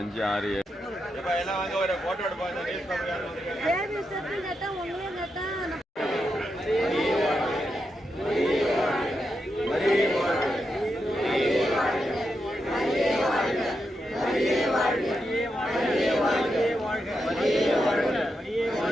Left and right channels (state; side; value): normal; both; correlation 0.85